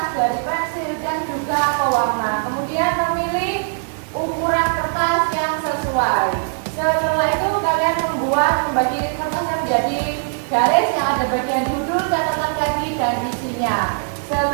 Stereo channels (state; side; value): silent; left; digital silence